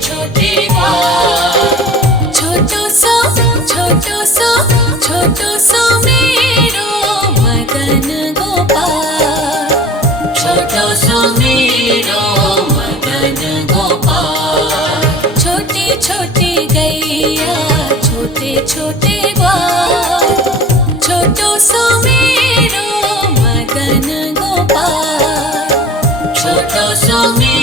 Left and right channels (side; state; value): both; normal; correlation 0.43